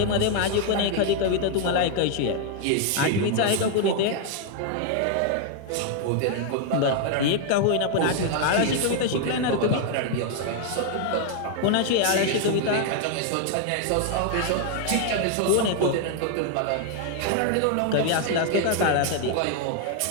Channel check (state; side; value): different; both; correlation 0.00